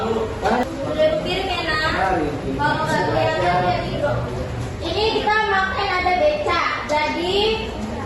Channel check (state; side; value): identical; both; correlation 1.00